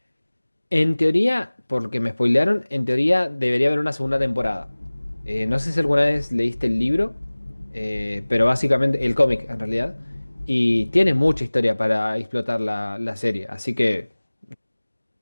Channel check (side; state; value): both; inverted; correlation -1.00